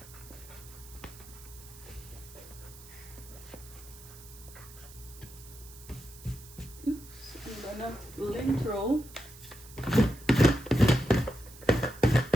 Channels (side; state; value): right; noise; hiss, 18 dB below the sound